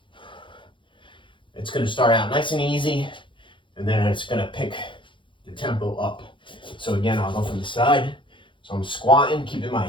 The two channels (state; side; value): late; right; 0.24 ms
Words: It's going to start out nice and easy, and then it's going to pick the tempo up. So again, I'll go from the side. So I'm squatting, keeping